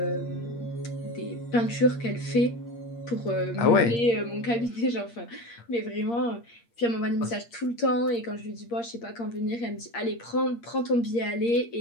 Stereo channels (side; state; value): right; late; 8.6 ms